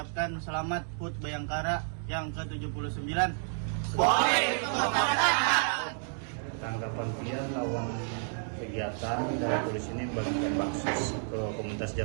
selamat HUT Bayangkara yang ke-79. Tanggapan pian lawan kegiatan dari polisi ini membagikan baksos ke komunitas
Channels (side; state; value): left; silent; 56 dB below the other